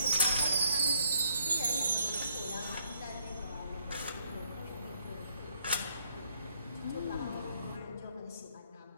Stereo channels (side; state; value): both; inverted; correlation -0.70